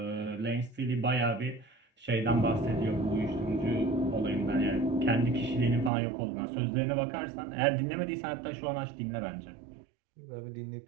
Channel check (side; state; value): left; drops out; at 5.9 s